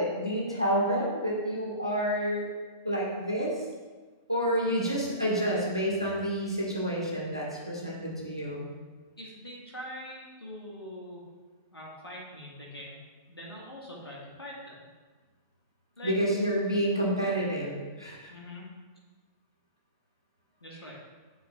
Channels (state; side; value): inverted; both; correlation -0.38